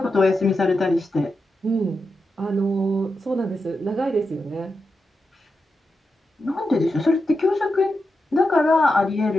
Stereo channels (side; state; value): both; normal; correlation 0.88